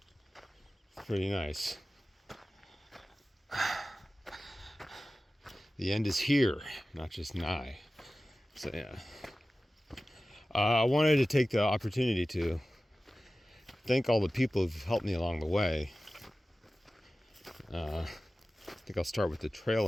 pretty nice. The end is here, not just nigh. So yeah. I wanted to take the opportunity to thank all the people who've helped me along the way. I think I'll start with the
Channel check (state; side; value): normal; both; correlation 0.96